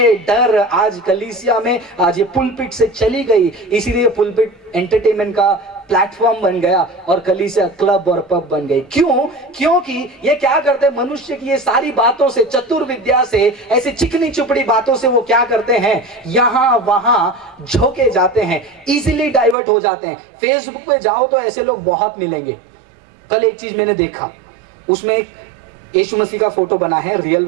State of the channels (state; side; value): drops out; left; at 19.6 s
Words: डर आज कलीसिया में, आज ये पुलपिट से चली गई। इसीलिए पुलपिट एंटरटेनमेंट का प्लेटफॉर्म बन गया और कलीसिया क्लब और पब बन गई। क्यों? क्योंकि ये क्या करते हैं, मनुष्य की ये सारी बातों से, चतुर्विद्या से, ऐसी चिकनी चुपड़ी बातों से वो क्या करते हैं, यहां वहां झोंके जाते हैं, इजीली डाइवर्ट हो जाते हैं। फेसबुक पे जाओ तो ऐसे लोग बहुत मिलेंगे। कल एक चीज मैंने देखा, उसमें एक यीशु मसीह का फोटो बना है, रियल